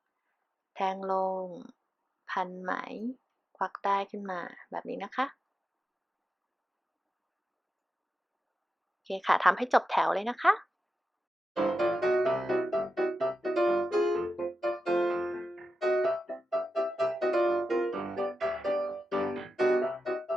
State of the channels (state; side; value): normal; both; correlation 0.90